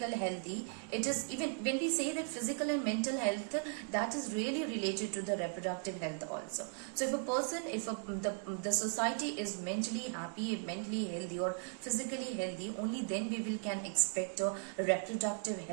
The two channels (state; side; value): silent; left; 53 dB below the other